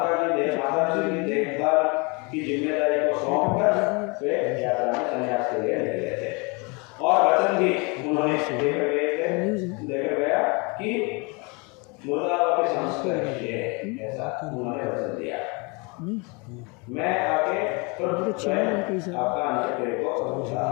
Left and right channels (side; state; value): right; quieter; 30.2 dB